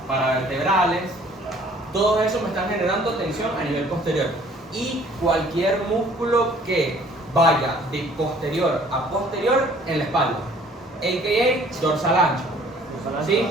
Paravertebrales, todos esos me están generando tensión a nivel posterior. Y cualquier músculo que vaya de posterior a posterior en la espalda, a.k.a. dorsal ancho, ¿sí?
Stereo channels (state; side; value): normal; both; correlation 0.56